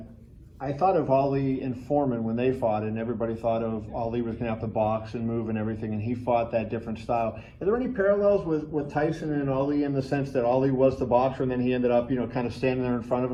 I thought of Ali and Foreman when they fought, and everybody thought of Ali was going to have to box and move and everything, and he fought that different style. Are there any parallels with Tyson and Ali in the sense that Ali was the boxer and then he ended up, kind of standing there in front of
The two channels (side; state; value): both; identical; correlation 1.00